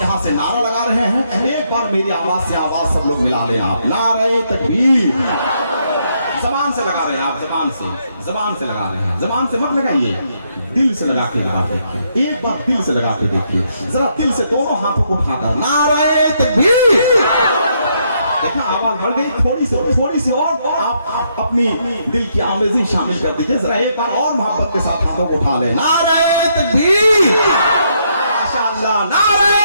से नारा लगा रहे हैं, एक बार मेरी आवाज से आवाज सब लोग मिला लें आप। नारे तकबीर, जबान से लगा रहे हैं आप, जबान से लगा रहे हैं, जबान से मत लगाइए, दिल से लगा के लगा देखिए, एक बार दिल से लगा के देखिए, जरा दिल से दोनों हाथों को उठाकर नारे तकबीर। देखा आवाज बढ़ गई, थोड़ी सी और आप अपनी दिल की आमेज़ी शामिल कर दीजिए। जरा एक बार और मोहब्बत के साथ हाथों को उठा ले, नारे तकबीर, माशाअल्लाह,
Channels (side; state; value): both; inverted; correlation -0.75